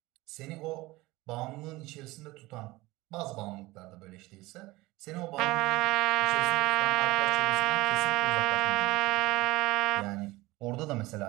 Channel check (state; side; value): quieter; left; 20.2 dB